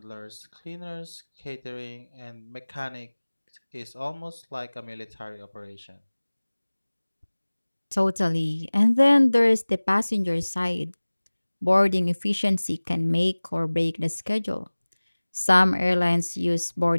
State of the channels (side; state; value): both; inverted; correlation -1.00